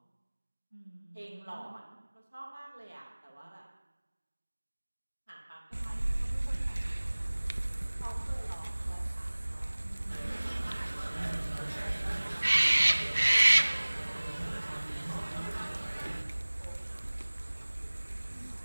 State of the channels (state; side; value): inverted; both; correlation -1.00